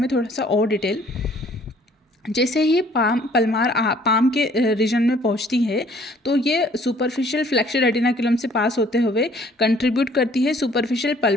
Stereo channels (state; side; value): normal; both; correlation 0.58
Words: थोड़ा सा और डिटेल। जैसे ही पाम के रीजन में पहुंचती है तो ये सुपरफिशियल फ्लेक्सर रेटिनाकुलम से पास होते हुए कंट्रीब्यूट करती है सुपरफिशियल